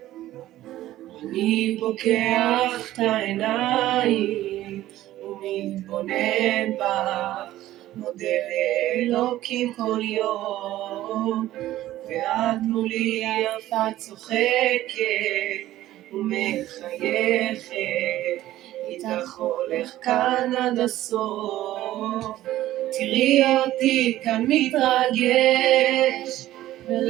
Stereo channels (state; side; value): quieter; left; 14.5 dB